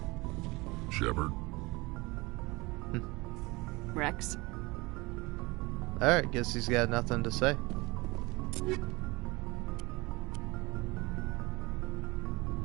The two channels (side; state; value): left; quieter; 23.6 dB